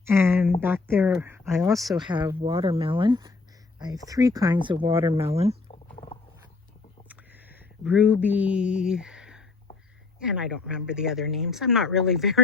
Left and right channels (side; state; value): right; quieter; 3.9 dB